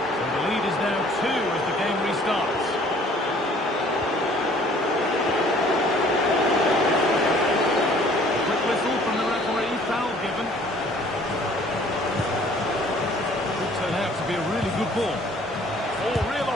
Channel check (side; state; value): both; normal; correlation 0.55